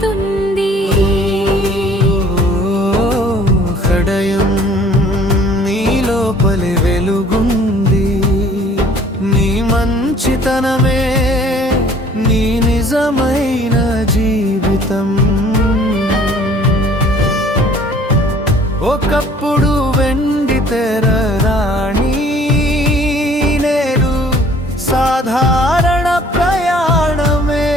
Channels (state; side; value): normal; both; correlation 0.54